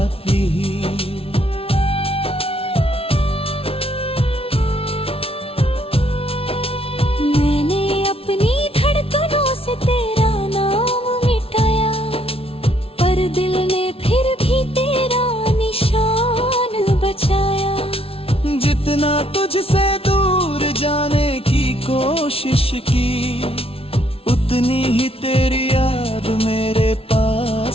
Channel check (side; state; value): right; late; 0.27 ms